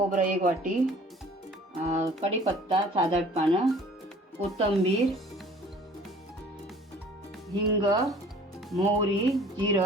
1 वाटी, कढीपत्ता 7-8 पानं, कोथिंबीर, हिंग, मोहरी,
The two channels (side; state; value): both; normal; correlation 0.51